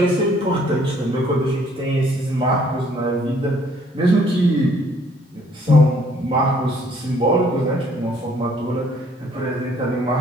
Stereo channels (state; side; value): normal; both; correlation 0.62